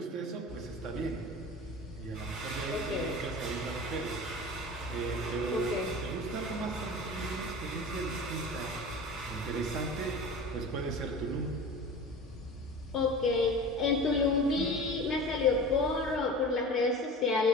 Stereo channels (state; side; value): normal; both; correlation 0.36